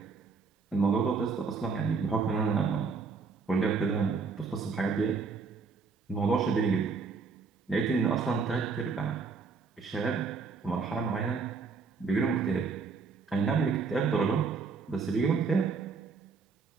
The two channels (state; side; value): quieter; left; 4.9 dB